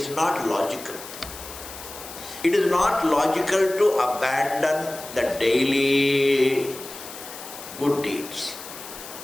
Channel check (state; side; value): noise; left; hiss, 13 dB below the sound